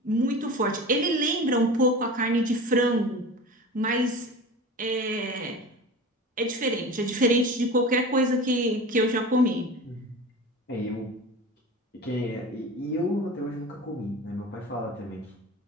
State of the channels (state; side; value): normal; both; correlation 0.33